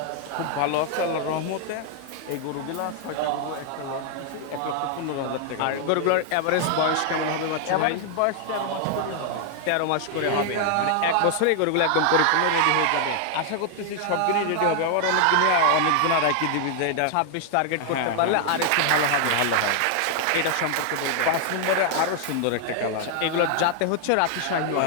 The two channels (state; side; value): different; both; correlation 0.00